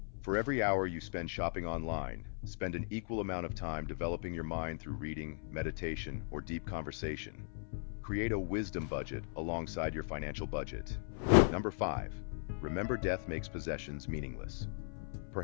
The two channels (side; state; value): right; silent; 53 dB below the other